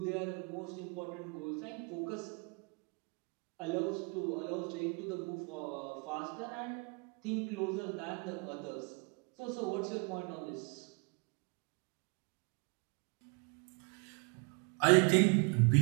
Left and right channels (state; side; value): quieter; left; 32.0 dB